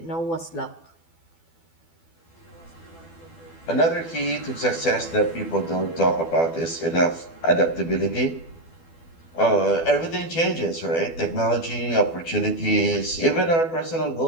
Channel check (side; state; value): right; late; 12 ms